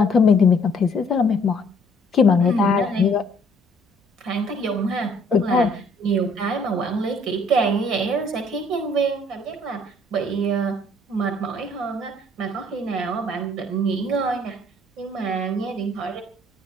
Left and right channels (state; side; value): normal; both; correlation 0.61